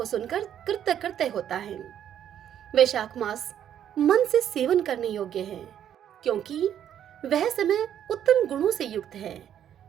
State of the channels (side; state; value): left; quieter; 10.0 dB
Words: सुनकर कृत्य कृत्य होता है। वैशाख मास मन से सेवन करने योग्य है क्योंकि वह समय उत्तम गुणों से युक्त है।